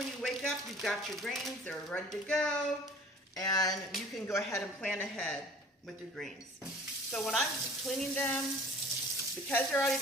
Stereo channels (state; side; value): normal; both; correlation 0.47